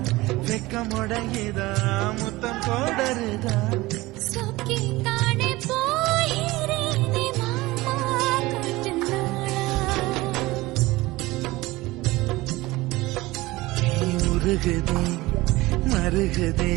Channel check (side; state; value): left; quieter; 19.8 dB